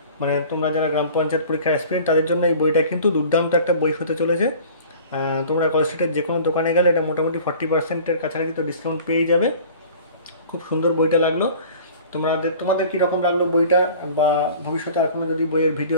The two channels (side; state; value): both; inverted; correlation -0.45